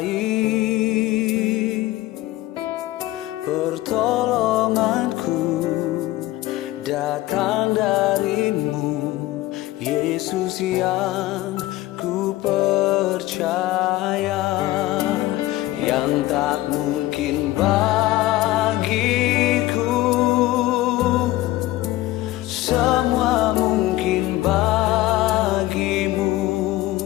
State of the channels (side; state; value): right; quieter; 16.8 dB